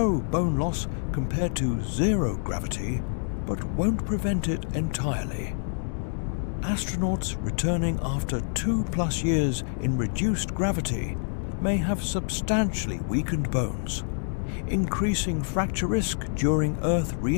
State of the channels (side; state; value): right; silent; digital silence